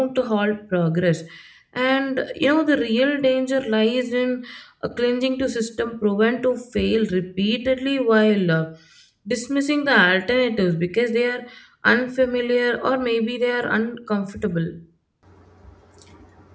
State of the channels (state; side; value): identical; both; correlation 1.00